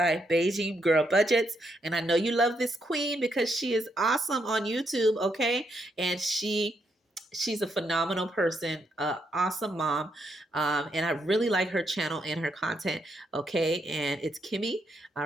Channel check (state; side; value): normal; both; correlation 0.78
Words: Beijing Girl Budgets. And I know you love this queen because she is awesome on YouTube, okay? And she's a phenomenal person, awesome mom, and I really like her channel and her content, okay? And it's Kimmy, all